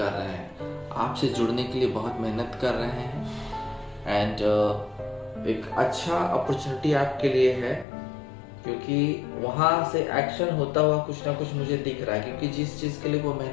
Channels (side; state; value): right; drops out; at 7.9 s